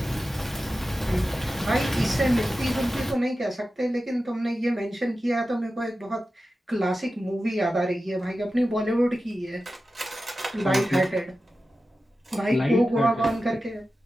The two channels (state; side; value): normal; both; correlation 0.93